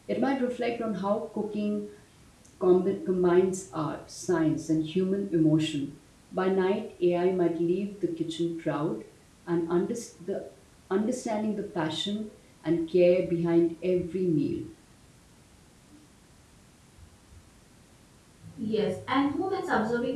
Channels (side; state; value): both; identical; correlation 1.00